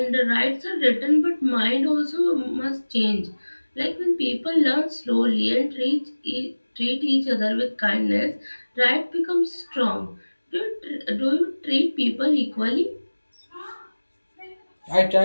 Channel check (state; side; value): inverted; both; correlation -1.00